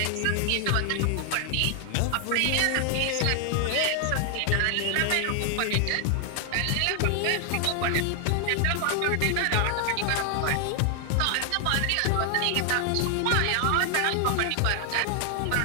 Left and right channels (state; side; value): different; both; correlation 0.00